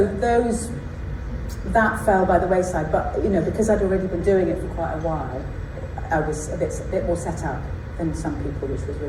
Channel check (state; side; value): identical; both; correlation 1.00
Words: that fell by the wayside. But because I'd already been doing it for quite a while, I was a bit more set up than some people, which was